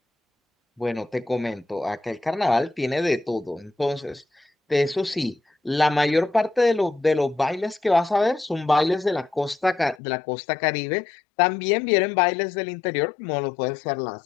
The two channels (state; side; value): drops out; right; at 10.0 s